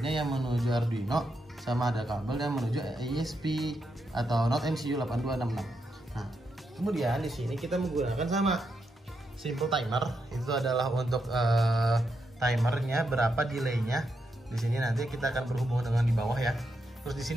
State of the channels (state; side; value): normal; both; correlation 0.83